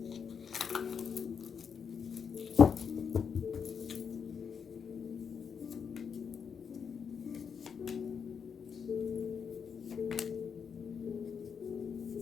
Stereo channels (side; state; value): right; quieter; 6.7 dB